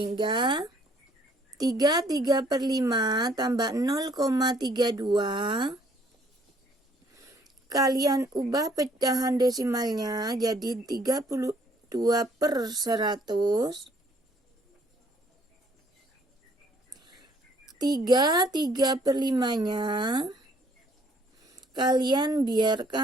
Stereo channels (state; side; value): normal; both; correlation 0.63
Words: 3/5 tambah 0,32 kalian ubah pecahan desimalnya jadi 32/100. 3/5-nya kalian